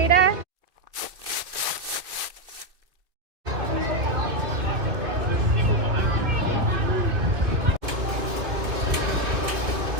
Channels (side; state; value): left; late; 2.7 ms